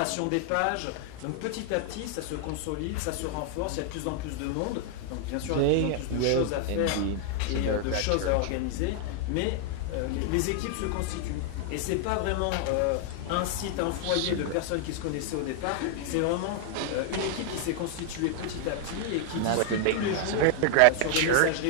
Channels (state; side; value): different; both; correlation 0.00